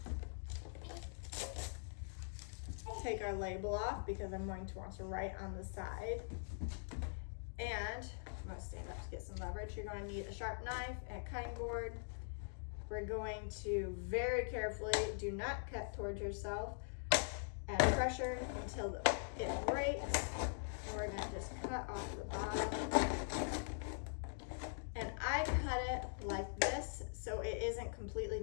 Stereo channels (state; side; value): silent; right; digital silence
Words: take our label off because I'm going to want to write on the side. And I'm going to stand up to get some leverage. You're going to need a sharp knife and a cutting board. We're going to very carefully, do not cut towards yourself, add pressure until it breaks. And we're going to just cut off the bottom. And I cut it like this so it isn't completely